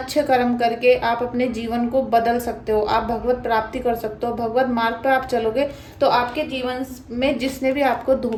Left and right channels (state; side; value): identical; both; correlation 1.00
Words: कर्म करके आप अपने जीवन को बदल सकते हो, आप भगवत प्राप्ति कर सकते हो। भगवत मार्ग पे आप चलोगे तो आपके जीवन में जिसने भी आपको